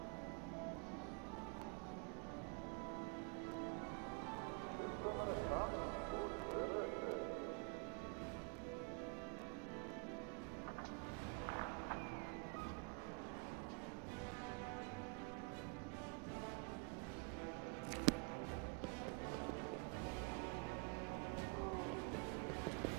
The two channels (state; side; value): quieter; left; 31.6 dB